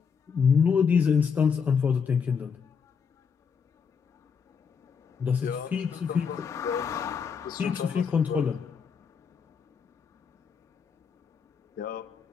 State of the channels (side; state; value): right; quieter; 6.3 dB